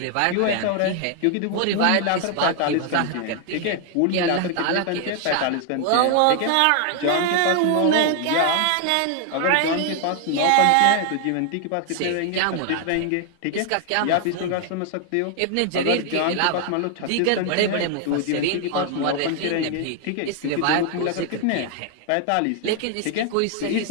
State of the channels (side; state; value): both; different; correlation 0.00